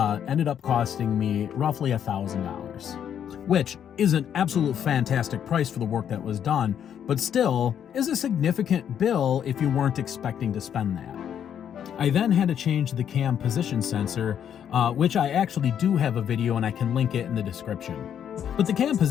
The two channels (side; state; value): right; quieter; 9.1 dB